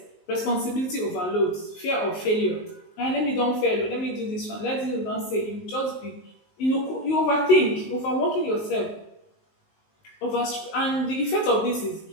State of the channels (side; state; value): right; late; 19 ms